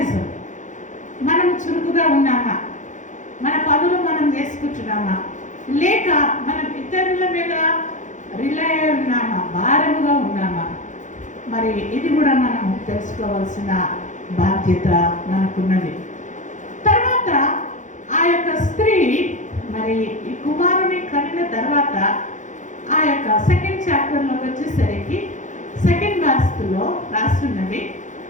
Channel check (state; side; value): late; right; 0.36 ms